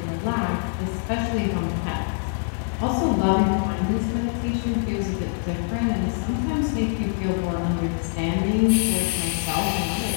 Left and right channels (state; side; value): silent; right; digital silence